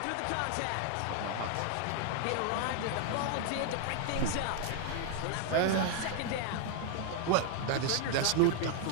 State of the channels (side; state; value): both; different; correlation 0.00